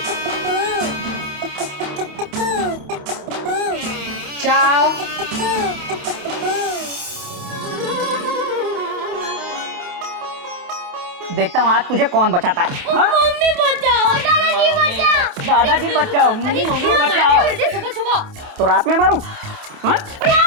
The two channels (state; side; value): late; left; 28 ms